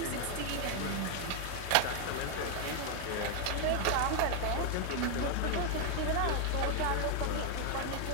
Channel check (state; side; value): different; both; correlation 0.00